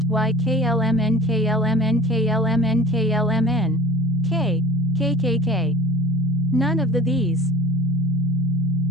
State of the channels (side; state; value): both; normal; correlation 0.45